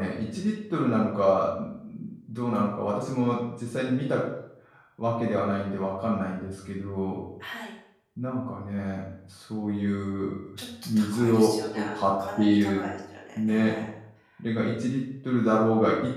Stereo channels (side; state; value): both; identical; correlation 1.00